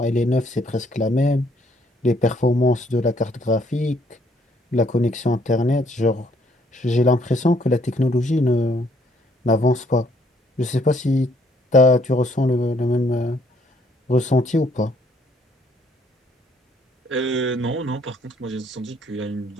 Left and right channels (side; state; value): both; normal; correlation 0.67